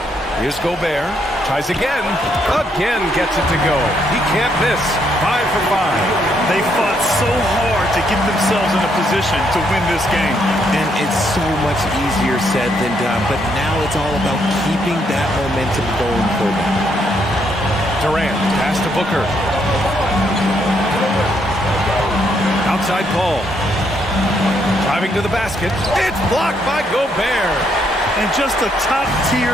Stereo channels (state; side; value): normal; both; correlation 0.74